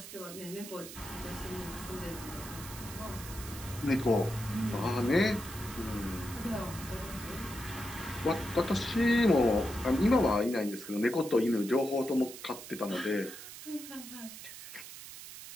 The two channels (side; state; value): right; noise; hiss, 13 dB below the sound